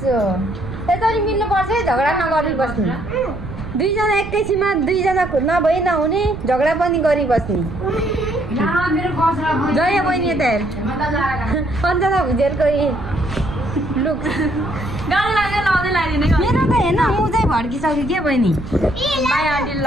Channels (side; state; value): right; noise; rumble, 11 dB below the sound